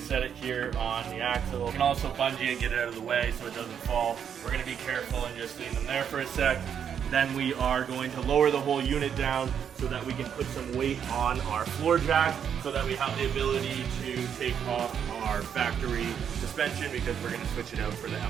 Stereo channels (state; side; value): quieter; left; 8.1 dB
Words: it here on the axle. You can also bungee and get it out of the way so it doesn't fall. We're gonna be careful and just leave them there for a sec. Then we are going to lower the whole unit down so that we can put some weight on our floor jack so that we have the ability to take off our factory suspension because we're going to switch it out for the